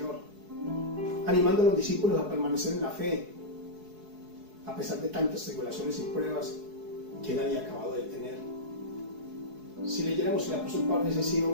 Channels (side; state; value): left; late; 4.7 ms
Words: animando a los discípulos a permanecer en la fe. A pesar de tantas tribulaciones y pruebas, que él había acabado de tener. Si leyéramos el apóstol Pablo, hubiese sido